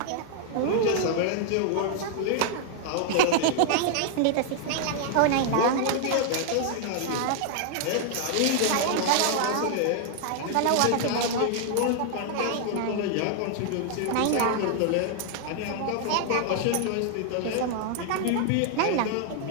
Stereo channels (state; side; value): different; both; correlation 0.00